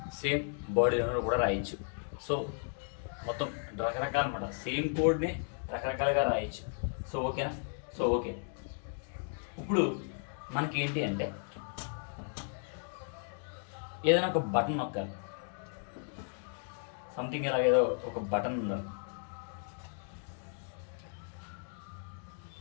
సేమ్ బాడీలోనూ కూడా రాయొచ్చు. సో మొత్తం రకరకాల అన్నమాట. సేమ్ కోడ్ని రకరకాలుగా రాయొచ్చు. సో ఓకేనా? సో ఓకే, ఇప్పుడు మనకి ఏంటి అంటే ఏదైనా ఒక బటన్ నొక్కాలి. సంథింగ్ ఇలాగేదో ఒక బటన్ ఉండాలి.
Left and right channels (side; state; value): right; silent; 54 dB below the other